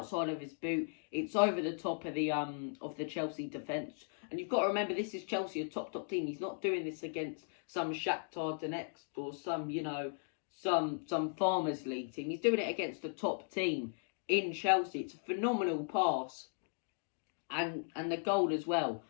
of his boot. It's over the top of the Chelsea defence. And you've got to remember, this is Chelsea, a top team. He's not doing this against some Shakhtar Donetsk or some Farmers League team. He's doing it against a top team in Chelsea. It's a phenomenal pass. And the goal as well.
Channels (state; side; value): silent; right; digital silence